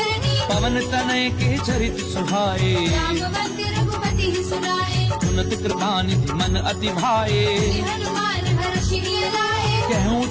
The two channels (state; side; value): identical; both; correlation 1.00